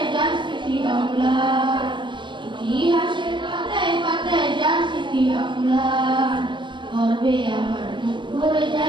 যার স্মৃতি অম্লান, ইতিহাসের পাতায় পাতায় যার স্মৃতি অম্লান, গর্বে আমার বুক ভরে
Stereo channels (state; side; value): late; left; 0.23 ms